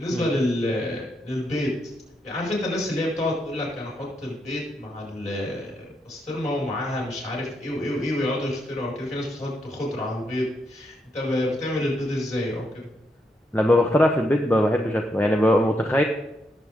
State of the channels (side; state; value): both; normal; correlation 0.79